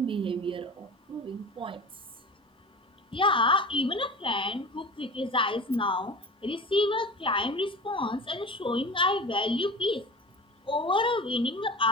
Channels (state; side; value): normal; both; correlation 0.34